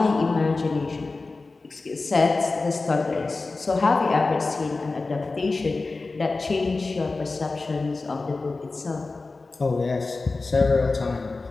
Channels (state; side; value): quieter; right; 3.6 dB